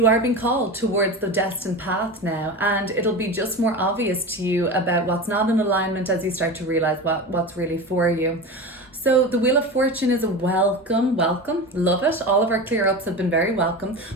are being called towards the destined path now, and it'll be just more obvious to you about what's not in alignment as you start to realize what's really for you. So the Wheel of Fortune is a welcome, love it. All of our clear ups have been very welcome.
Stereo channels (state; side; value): normal; both; correlation 0.27